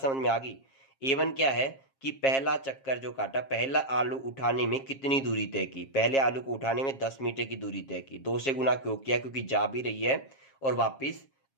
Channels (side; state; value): right; late; 7.4 ms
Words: समझ में आ गई। A1 क्या है कि पहला चक्कर जो काटा, पहला आलू उठाने में कितनी दूरी तय की, पहले आलू को उठाने में 10 मीटर की दूरी तय की, 2 से गुना क्यों किया, क्योंकि जा भी रही है और वापिस